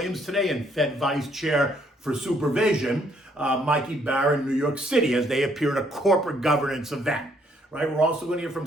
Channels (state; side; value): normal; both; correlation 0.68